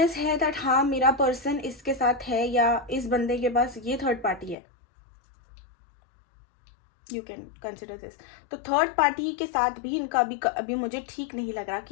है दैट हाँ मेरा पर्सन इसके साथ है या इस बंदे के पास ये थर्ड पार्टी है, यू कैन कंसिडर दिस। तो थर्ड पार्टी के साथ भी इनका अभी मुझे ठीक नहीं लग रहा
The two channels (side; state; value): right; drops out; at 4.5 s